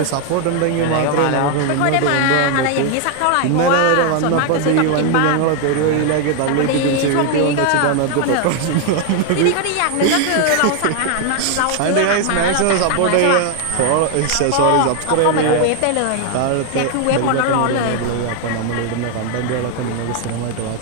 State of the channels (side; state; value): both; different; correlation 0.00